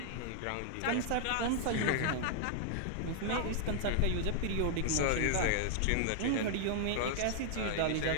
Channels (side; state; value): both; different; correlation -0.01